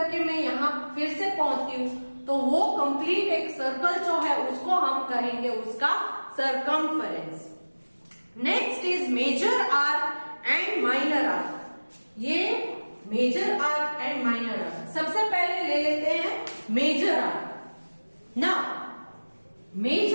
मैं यहां फिर से पहुंचती हूं तो वो कंप्लीट एक सर्कल जो है उसको हम कहेंगे उसका circumference. Next is major arc and minor arc. ये major arc and minor arc. सबसे पहले ले लेते हैं मेजर आर्क। ना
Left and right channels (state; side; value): inverted; both; correlation -1.00